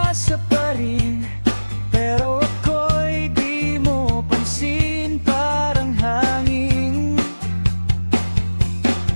pa rin, pero ako'y di mo pansin, parang hangin.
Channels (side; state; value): both; inverted; correlation -1.00